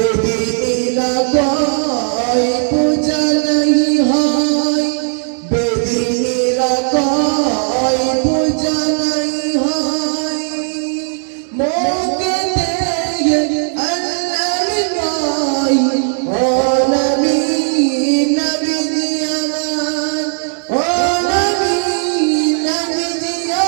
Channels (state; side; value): silent; left; 57 dB below the other